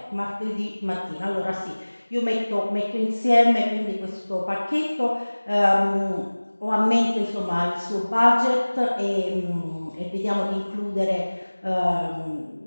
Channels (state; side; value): inverted; both; correlation -1.00